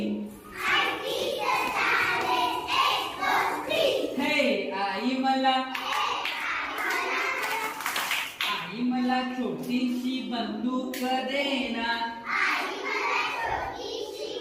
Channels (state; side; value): identical; both; correlation 1.00